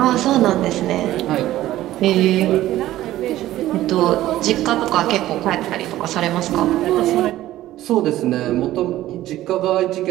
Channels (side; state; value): left; quieter; 14.7 dB